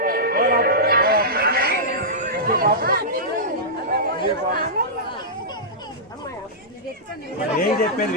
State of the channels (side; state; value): both; normal; correlation -0.14